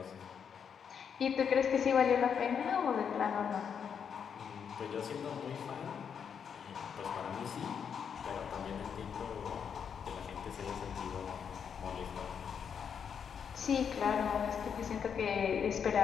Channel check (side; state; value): right; quieter; 7.3 dB